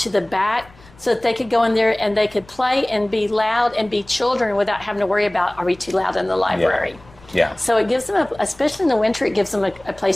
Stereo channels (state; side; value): noise; left; rumble, 26 dB below the sound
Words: the back, so that they could go in there and they could play and be loud and be children without having to worry about, are we too loud in the library? Yeah. So it gives them, especially in the winter, it gives them a